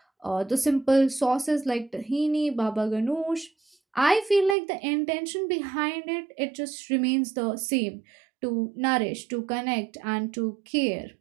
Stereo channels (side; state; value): left; drops out; at 4.5 s